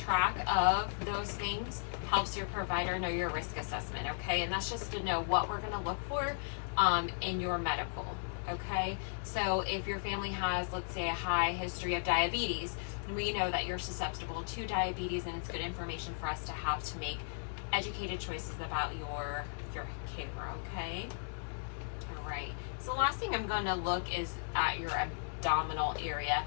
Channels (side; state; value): right; silent; digital silence